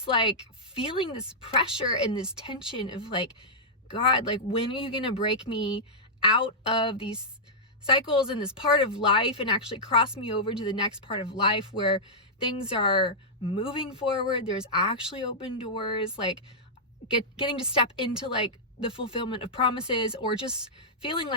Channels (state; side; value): normal; both; correlation -0.10